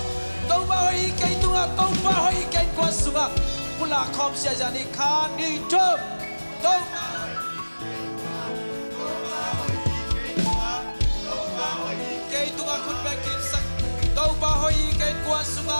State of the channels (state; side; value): inverted; both; correlation -1.00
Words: Tàu bay cái tunga tàu bay cái quan sunga, pula khom sia jani khan đi chớp, tàu cái tunga khut bay kim sak, tàu bay cái quan